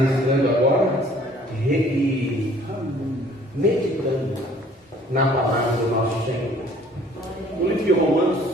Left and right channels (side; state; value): both; normal; correlation 0.56